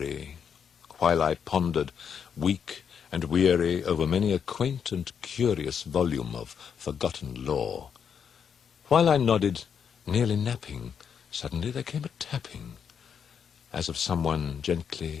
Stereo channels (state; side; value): quieter; right; 7.4 dB